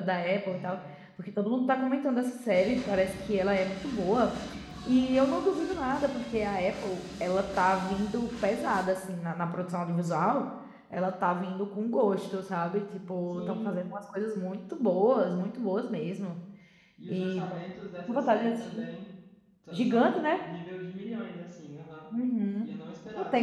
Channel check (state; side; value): identical; both; correlation 1.00